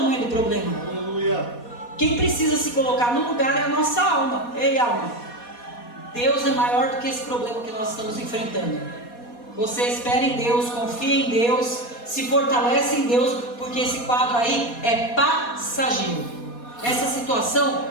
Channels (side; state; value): right; late; 4.2 ms